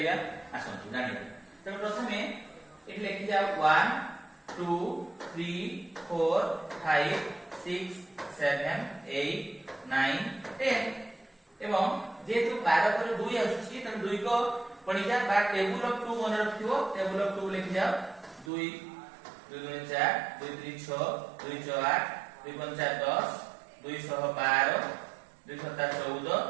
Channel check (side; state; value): left; drops out; at 18.5 s